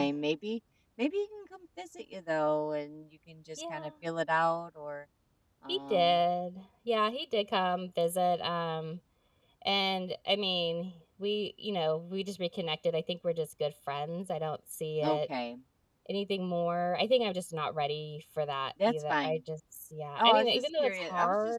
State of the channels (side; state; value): both; identical; correlation 1.00